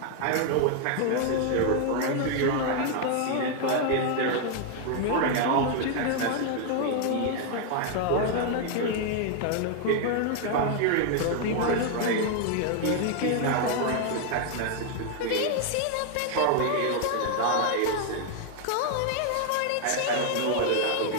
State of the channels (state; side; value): different; both; correlation 0.00